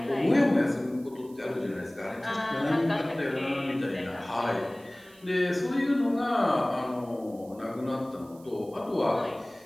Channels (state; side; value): noise; right; hiss, 26 dB below the sound